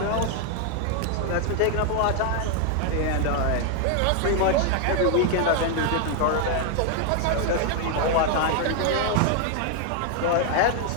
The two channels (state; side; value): different; both; correlation 0.00